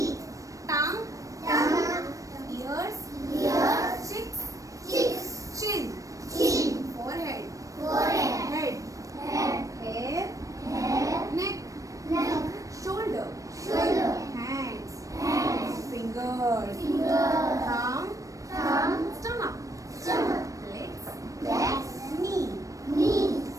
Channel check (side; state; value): left; late; 0.16 ms